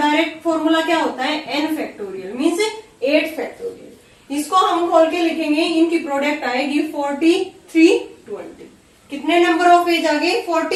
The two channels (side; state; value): both; identical; correlation 1.00